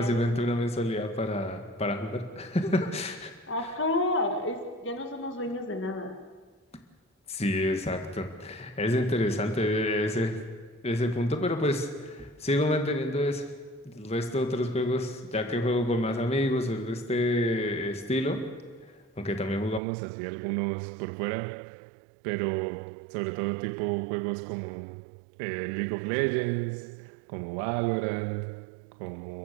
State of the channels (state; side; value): drops out; left; at 19.8 s